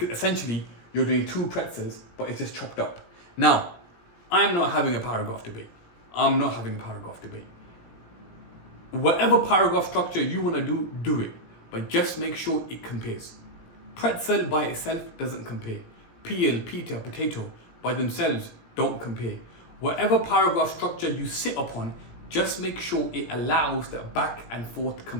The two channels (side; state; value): right; late; 17 ms